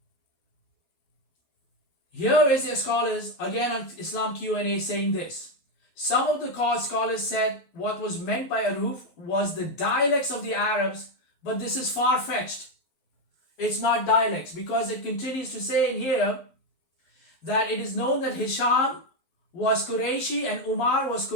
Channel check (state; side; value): late; right; 12 ms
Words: Here is their scholars, again on Islam Q&A, saying this. Some of the scholars said what was meant by Ahruf was the dialects of the Arabs, but this is far-fetched. It's not dialects, because it continues to say in here that it is known that Hisham was Qurayshi and Umar was